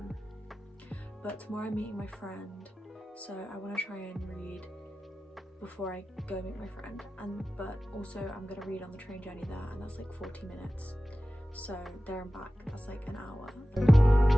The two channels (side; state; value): both; normal; correlation 0.95